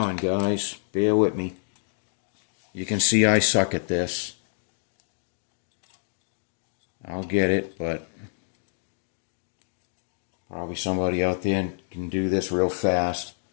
guys. Bear with me. You can see I suck at this. I'll get it, but probably somebody out there can do this real fast.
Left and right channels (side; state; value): right; silent; digital silence